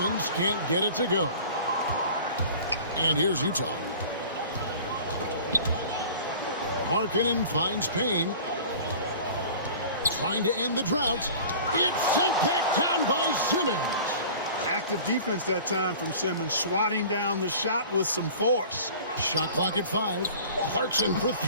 can't get it to go. And here's Utah. Markkanen finds Payne. Trying to end the drought. It's sent back down by Simmons. Active defense that time from Simmons, swatting down the shot with some force. Shot clock at 5. Clarkson for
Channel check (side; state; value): both; inverted; correlation -0.42